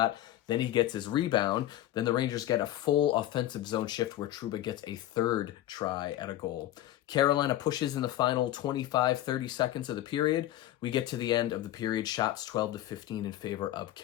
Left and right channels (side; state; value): right; quieter; 13.7 dB